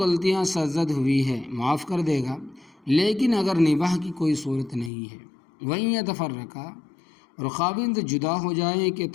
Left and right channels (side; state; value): right; drops out; at 4.9 s